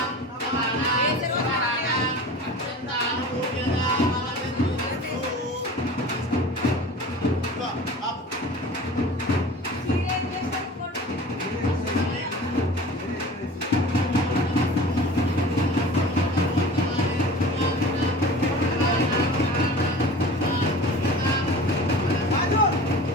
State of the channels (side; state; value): both; normal; correlation 0.39